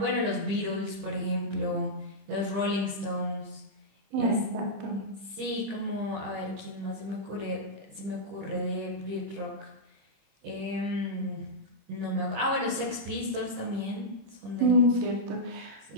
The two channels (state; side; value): late; left; 26 ms